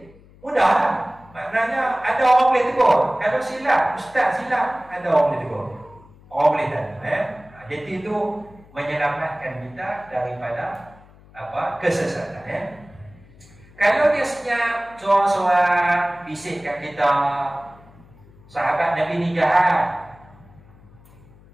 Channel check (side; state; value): left; noise; hum, 25 dB below the sound